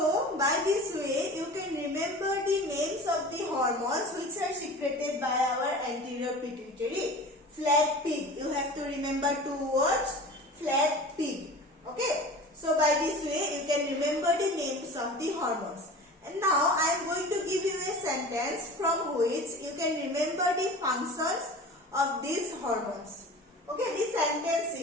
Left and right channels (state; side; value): normal; both; correlation 0.37